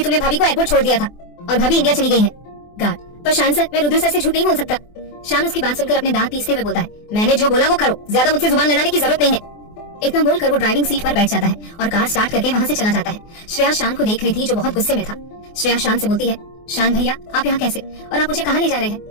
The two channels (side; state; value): right; late; 24 ms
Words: तुमने भाभी को एयरपोर्ट छोड़ दिया था और भाभी इंडिया चली गई है। गार्ड, पर शान सर, मैं रुद्र सर से झूठ नहीं बोल सकता। शान उसकी बात सुनकर अपने दांत पीसते हुए बोलता है, मैंने जो बोला वो करो, ज्यादा मुझसे जुबान लड़ाने की जरूरत नहीं है। इतना बोलकर वो ड्राइविंग सीट पर बैठ जाता है और कार स्टार्ट करके वहाँ से चला जाता है। श्रेया शान को देख रही थी जो बहुत गुस्से में था। श्रेया शान से बोलती है, शान भैया आप यहाँ कैसे, और आप मुझे कहाँ ले जा रहे